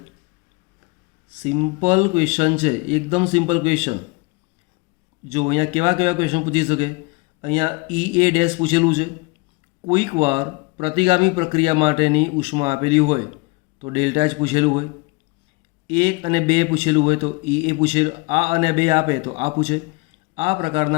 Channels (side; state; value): right; quieter; 27.0 dB